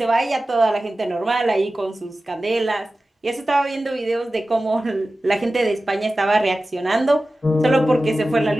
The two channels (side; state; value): both; normal; correlation 0.95